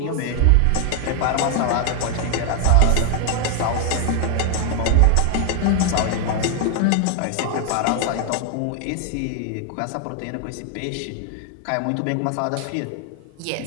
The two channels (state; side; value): different; both; correlation 0.00